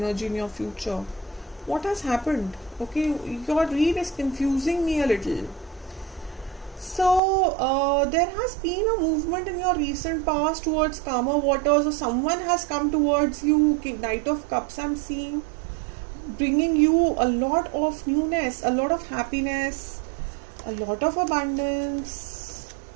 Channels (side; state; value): left; drops out; at 7.2 s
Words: in your future. What has happened? Okay, your read is confusing me a little. So there has been a movement in your recent past towards calmer waters, or someone has come towards you. Knight of Cups I'm seeing, bringing you a lot of newness, a lot of happiness, a lot of abundance.